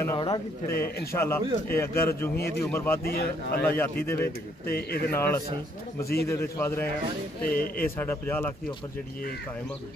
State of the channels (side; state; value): both; normal; correlation 0.68